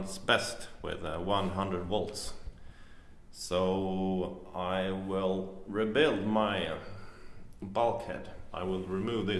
best with 100 volts. So I will rebuild my bulkhead. I will remove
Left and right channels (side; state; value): both; identical; correlation 1.00